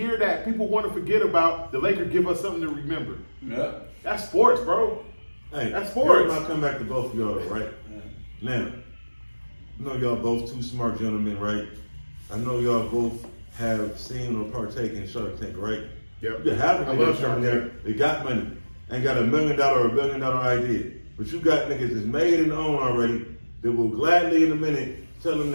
that people want to forget about, the Lakers give us something to remember. Yeah. That's sports, bro. Hey, That's sports. I'll come back to both of y'all, right? Now, I know y'all both two smart gentlemen, right? I know y'all both have seen or partaken in Shark Tank, right? Yep. You have I love Shark Tank. They got money. Ain't got $1 million or $1 billion idea. But you got niggas that's made and owned already that will gladly in a minute tell them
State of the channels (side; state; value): both; inverted; correlation -1.00